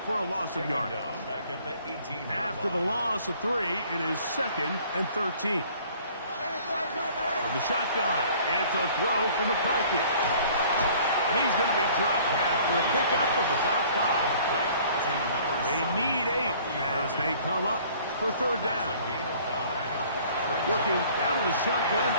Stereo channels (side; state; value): both; inverted; correlation -0.53